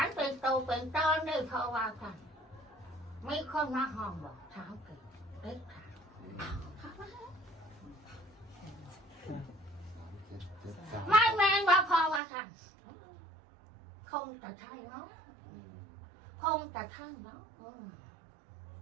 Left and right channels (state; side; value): drops out; left; at 12.2 s